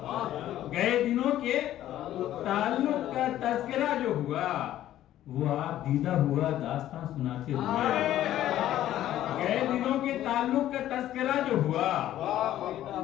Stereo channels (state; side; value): quieter; right; 12.9 dB